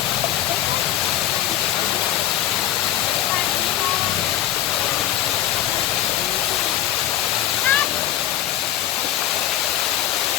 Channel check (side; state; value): right; quieter; 12.4 dB